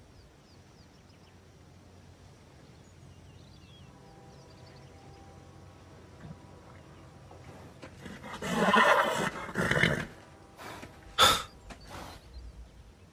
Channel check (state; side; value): identical; both; correlation 1.00